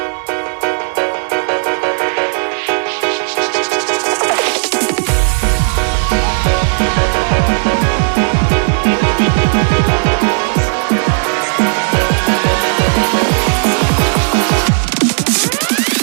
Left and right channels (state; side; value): silent; left; digital silence